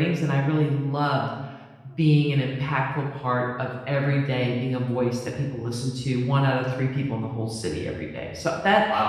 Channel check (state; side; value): identical; both; correlation 1.00